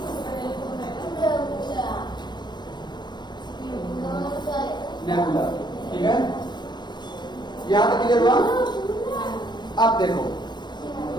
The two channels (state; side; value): late; right; 0.21 ms